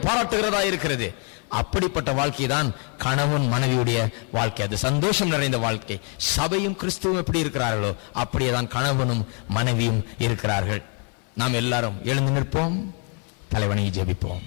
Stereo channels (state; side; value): quieter; right; 37.8 dB